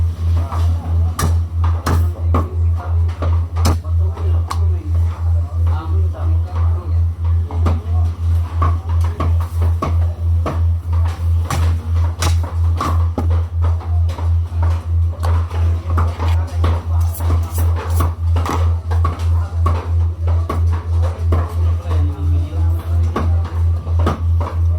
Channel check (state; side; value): identical; both; correlation 1.00